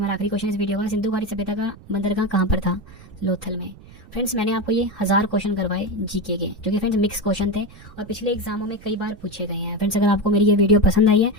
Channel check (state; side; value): noise; right; rumble, 21 dB below the sound